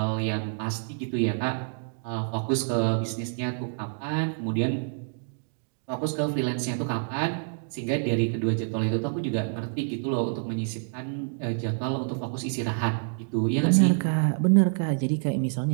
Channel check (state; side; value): silent; left; 60 dB below the other